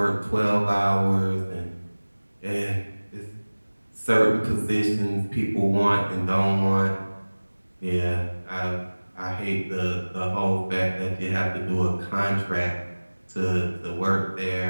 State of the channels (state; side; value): inverted; both; correlation -1.00